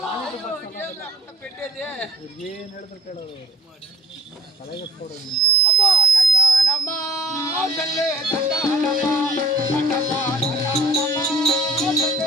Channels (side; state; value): both; normal; correlation 0.56